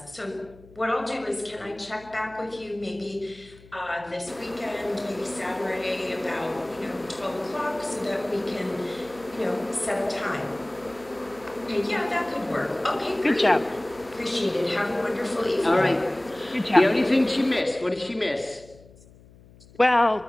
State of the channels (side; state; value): left; noise; hum, 24 dB below the sound